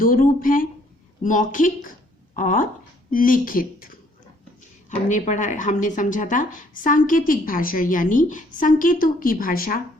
रूप हैं, मौखिक और लिखित। हमने समझा था सांकेतिक भाषा यानी संकेतों की भाषा,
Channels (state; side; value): normal; both; correlation 0.64